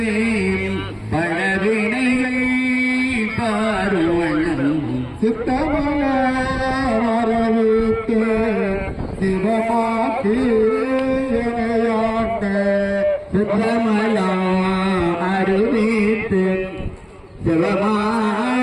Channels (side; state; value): both; identical; correlation 1.00